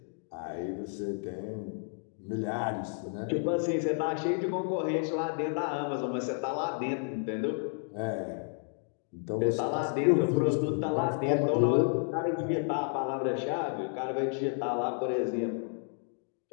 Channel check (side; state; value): right; silent; 57 dB below the other